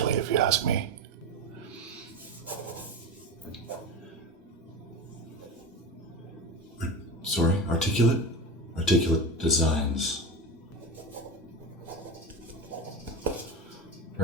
if you ask me. Sorry, articulate? Articulate designs.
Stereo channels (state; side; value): normal; both; correlation 0.24